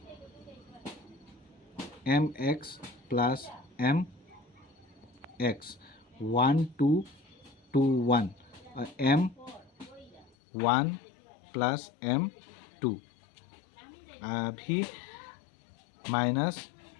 M X plus M X 1 2 2 1, और एम 1 प्लस एम 2। अभी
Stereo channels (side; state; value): right; drops out; at 10.3 s